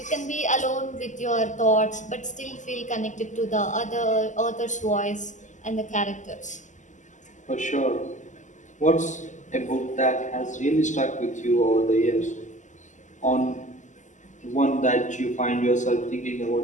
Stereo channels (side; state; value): right; late; 0.36 ms